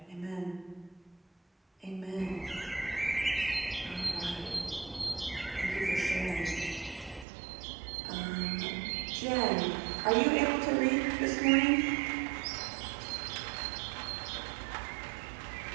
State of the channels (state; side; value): drops out; left; at 7.2 s